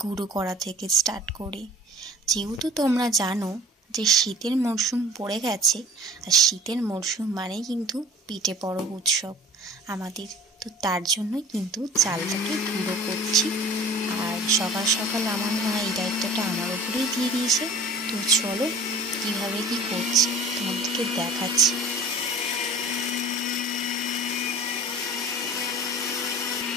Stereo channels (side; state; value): both; normal; correlation 0.44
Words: গুঁড়ো করা থেকে স্টার্ট করে। যেহেতু তোমরা জানো যে শীতের মরশুম পড়ে গেছে, আর শীতের মরশুম মানেই কিন্তু পিঠে পরব উৎসব আমাদের। তো তার জন্যই কিন্তু চালটাকে গুঁড়ো করছি। আর সকাল সকাল আমার মা এই দায়িত্বটা আমার উপরেই দিয়ে দিয়েছে। তো চলো কীভাবে কি করছি তোমাদেরকে দেখাচ্ছি।